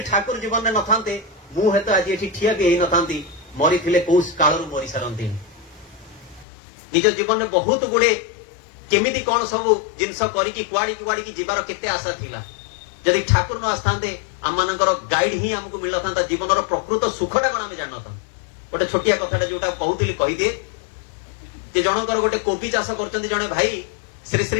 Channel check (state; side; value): drops out; right; at 6.5 s